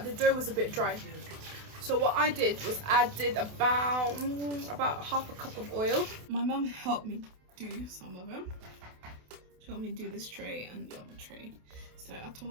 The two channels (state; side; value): late; left; 28 ms